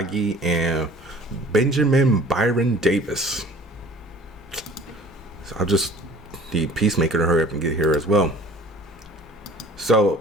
and Benjamin Byron Davis. So I'll just need Peacemaker to hurry up and get here as well.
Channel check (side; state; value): both; normal; correlation 0.48